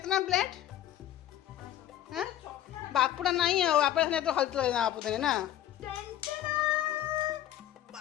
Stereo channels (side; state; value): right; quieter; 12.4 dB